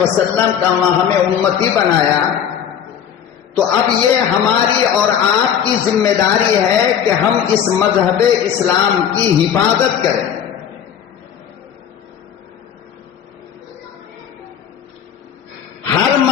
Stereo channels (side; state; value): right; quieter; 8.7 dB